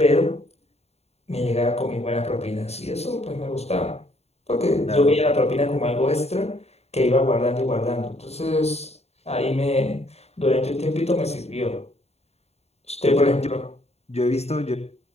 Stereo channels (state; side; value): late; right; 0.30 ms